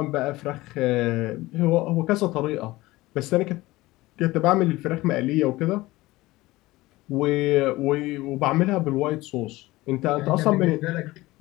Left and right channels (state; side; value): quieter; right; 19.2 dB